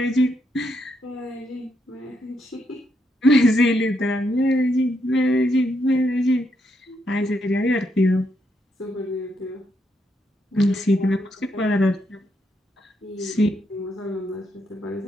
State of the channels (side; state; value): both; normal; correlation 0.78